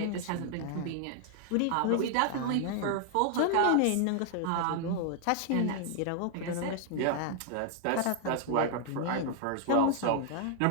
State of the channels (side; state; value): both; different; correlation 0.00